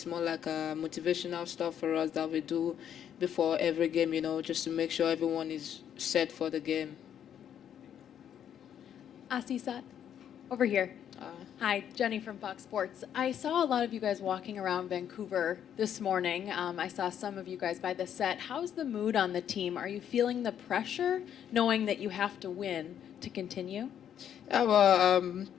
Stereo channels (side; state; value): right; quieter; 9.4 dB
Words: more like a motivational stuff for us that we do before every game, just to make sure everyone is set for the game. Asisat, over here. Hi, Jenny from Fox Sports. I saw a lot of you guys walking around Vancouver this morning. I saw some of you guys by the set. How's the mood on the team? Are you feeling the pressure, knowing that you have to win to continue? Yeah, well,